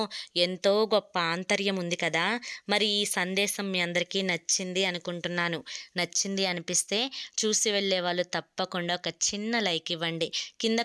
ఎంతో గొప్ప ఆంతర్యం ఉంది కదా. మరి ఈ సందేశం మీ అందరికీ నచ్చింది అనుకుంటున్నాను. నచ్చింది అనిపిస్తే చూసి వెళ్ళే వాళ్ళు తప్పకుండా ఒక చిన్న లైక్ ఇవ్వండి. కింద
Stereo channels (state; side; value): identical; both; correlation 1.00